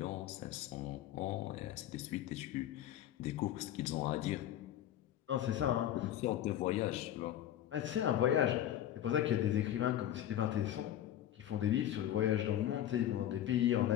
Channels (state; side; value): quieter; right; 11.7 dB